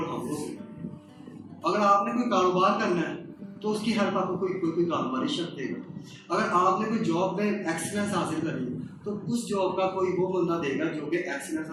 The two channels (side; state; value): both; identical; correlation 1.00